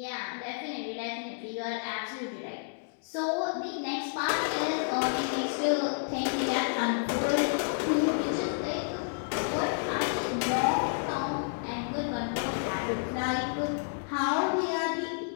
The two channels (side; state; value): right; silent; digital silence